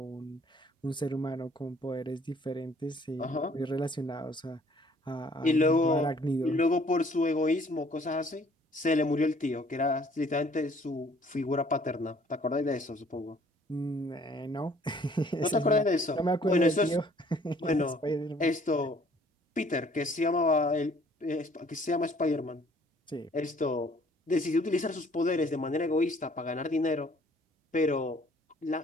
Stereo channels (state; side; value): normal; both; correlation 0.58